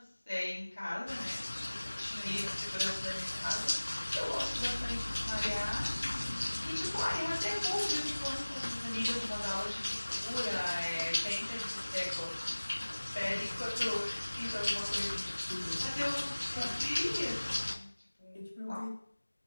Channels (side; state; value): both; inverted; correlation -1.00